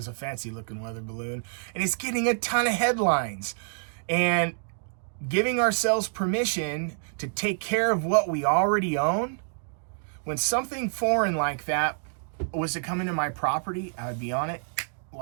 a fancy looking weather balloon. And it's getting a ton of headlines. And giving ourselves permission to take care of what we already own. When something foreign like that was to come into my property, I would be on it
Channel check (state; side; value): silent; left; digital silence